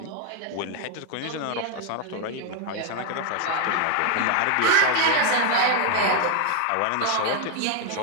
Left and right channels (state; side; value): different; both; correlation 0.01